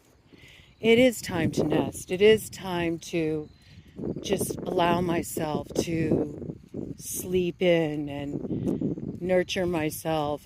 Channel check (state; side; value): identical; both; correlation 1.00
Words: It is time to nest. It is time to just allow myself to sleep in and nurture myself